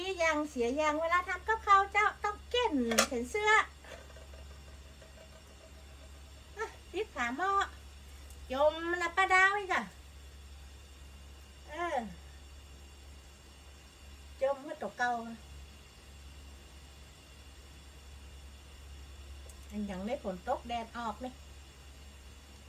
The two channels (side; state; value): both; identical; correlation 1.00